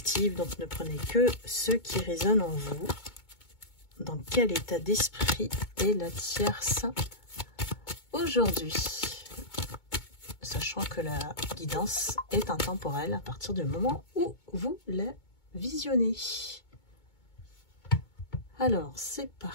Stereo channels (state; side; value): late; right; 2.2 ms